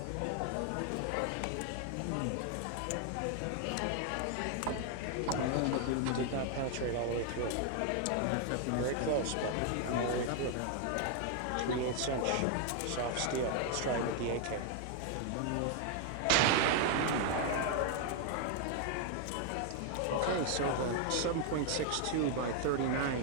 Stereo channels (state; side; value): different; both; correlation 0.00